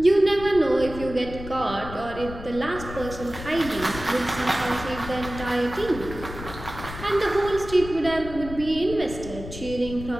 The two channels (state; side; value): noise; left; rumble, 11 dB below the sound